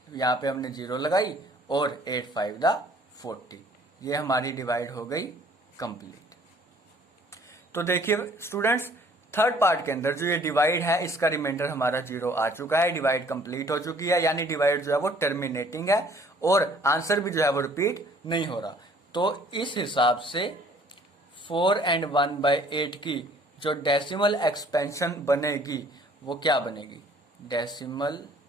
यहाँ पे हमने जीरो लगाई और 8 5 दा 40। ये हमारी डिवाइड हो गई कंप्लीट। तो देखिए स्टूडेंट्स, थर्ड पार्ट के अंदर जो ये डिवाइड है इसका रिमाइंडर हमारा जीरो आ चुका है, डिवाइड कंप्लीट हो चुकी है, यानी डिवाइड जो है वो टर्मिनेटिंग है और आंसर भी जो है वो रिपीट नहीं हो रहा। तो इस हिसाब से 4 and 1/8 की जो डेसिमल एक्सपेंशन बनेगी वो क्या बनेगी, डेसिमल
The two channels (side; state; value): both; normal; correlation 0.56